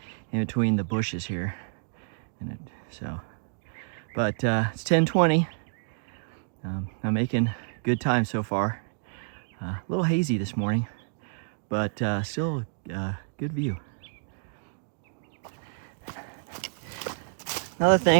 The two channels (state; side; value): silent; left; digital silence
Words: in between the bushes here. But it's 10:20. I'm making good time so far. A little hazy this morning, but still good view. Another